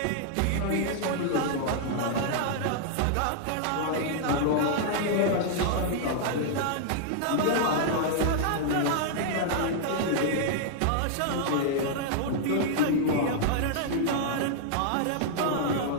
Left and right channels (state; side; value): different; both; correlation -0.01